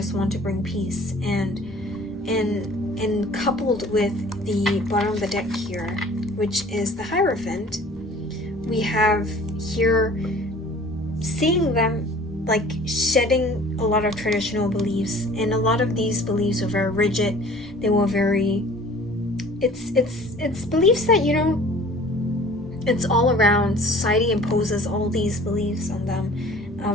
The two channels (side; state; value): both; normal; correlation 0.48